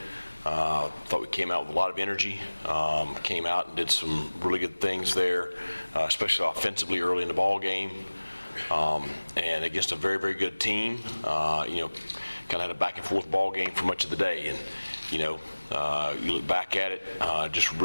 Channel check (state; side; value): inverted; both; correlation -1.00